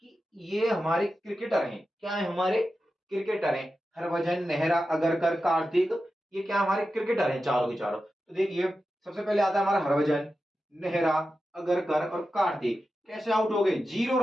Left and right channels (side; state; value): both; normal; correlation 0.91